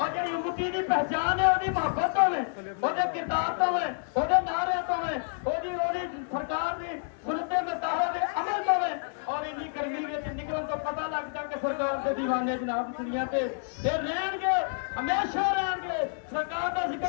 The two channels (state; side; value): silent; right; 59 dB below the other